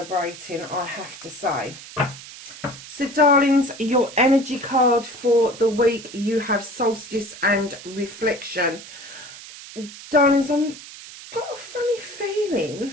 I have to say. So, darlings, your energy card for the week, you have Solstice and Reflection. Darlings, I've got a funny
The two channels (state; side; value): noise; right; hiss, 15 dB below the sound